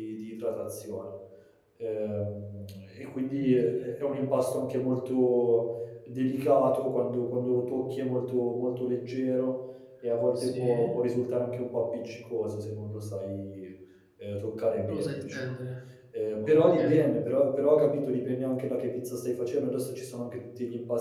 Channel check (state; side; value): identical; both; correlation 1.00